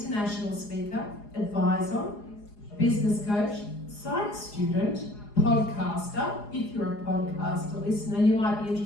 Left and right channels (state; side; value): late; right; 4.8 ms